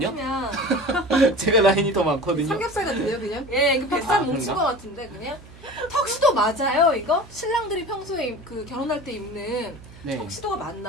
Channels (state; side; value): noise; right; hum, 21 dB below the sound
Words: 아니면 제가 라인이 더 많거든요. 삼겹살 같은데요, 그냥? 예, 그 뱃살 아, 뭉친 그런가? 것 같은데 그냥 턱시도 맞아요 이거? 신랑들이 평소에 그 결혼할 때 입는 네. 턱시도가